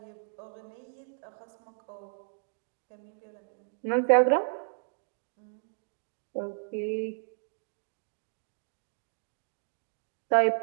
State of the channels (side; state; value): left; silent; digital silence